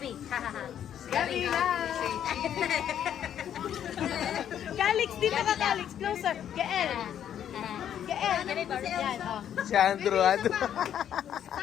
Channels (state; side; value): quieter; right; 9.8 dB